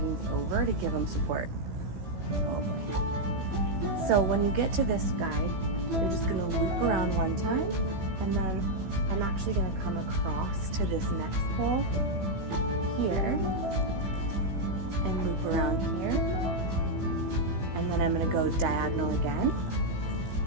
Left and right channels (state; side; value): late; left; 15 ms